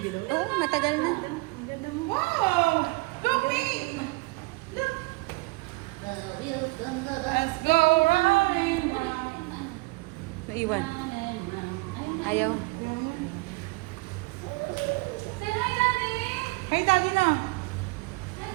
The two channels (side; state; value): left; quieter; 24.5 dB